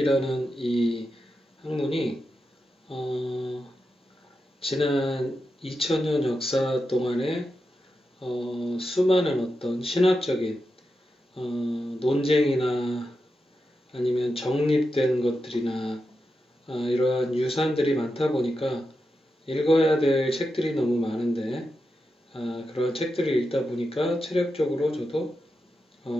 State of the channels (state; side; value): normal; both; correlation 0.88